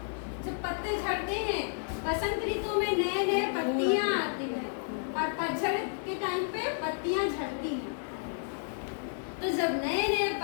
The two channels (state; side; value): silent; right; 57 dB below the other